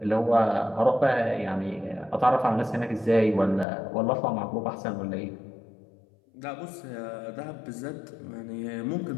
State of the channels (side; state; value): right; drops out; at 3.7 s